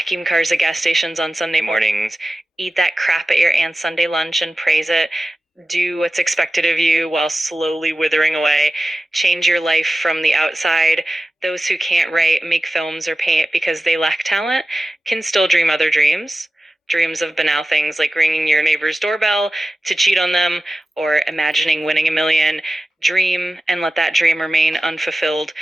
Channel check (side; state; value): both; normal; correlation 0.94